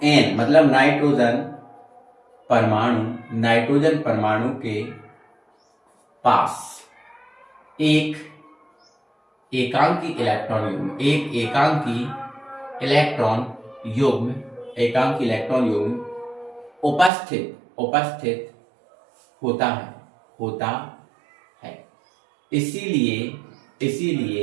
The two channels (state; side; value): drops out; left; at 17.1 s